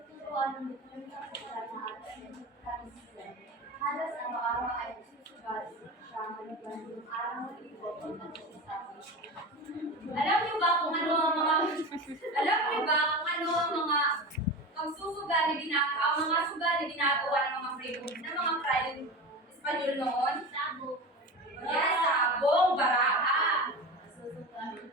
tuturuan ng dokumentang sa lahat ng kanisilan. Halos araw-araw ay nasusugal siya maliban yung araw ng ibo at nagsasabi. Alam niyo ba kung ano ang mga pagsusugal na ginagawa, ang mga sugal na ginagawa ng mga freedom, ng mga Friday Espanyol noon? Sabo. Yes, sabong, baraka.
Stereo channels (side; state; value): both; normal; correlation 0.28